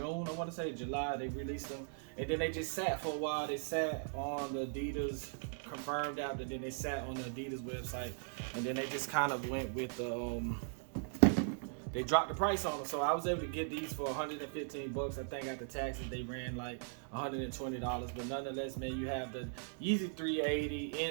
I want to say July. They released them, and then they just sat for a while. They sat on the Adidas confirmed app, and then they sat on the Adidas website, and then they just kind of went with the they dropped the price on them. So I was able to get these for 115 bucks. I think after taxes they ran like $120. But nonetheless, man, you have the Yeezy 380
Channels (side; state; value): left; silent; digital silence